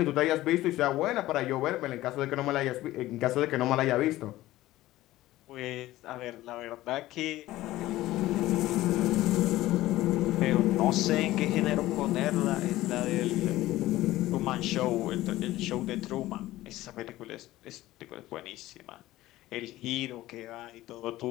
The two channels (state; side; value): quieter; right; 16.2 dB